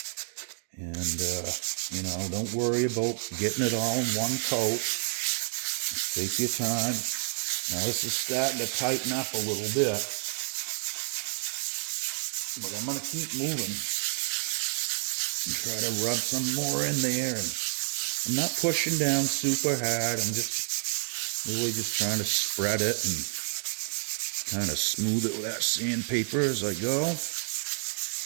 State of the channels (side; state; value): left; silent; digital silence